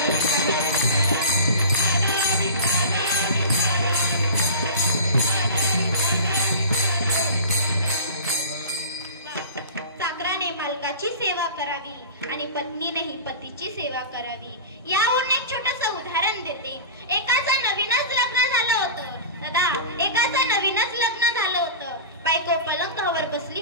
चाकराने मालकाची सेवा करावी आणि पत्नीनेही पतीची सेवा करावी. यावरून एक छोटस उदाहरण देते. एकाचं नवीनच लग्न झालं होतं. दादा, एकाचं नवीनच लग्न झालं होतं. बायको पलंगावर बसली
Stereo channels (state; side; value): inverted; both; correlation -0.33